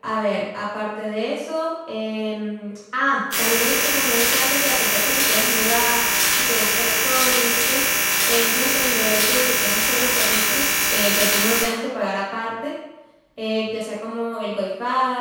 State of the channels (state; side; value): identical; both; correlation 1.00